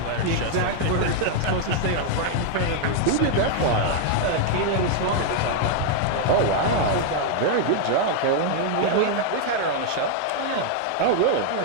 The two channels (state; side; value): different; both; correlation 0.00